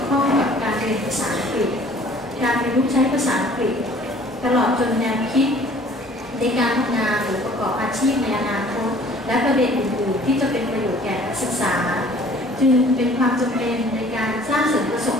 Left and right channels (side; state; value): both; normal; correlation 0.53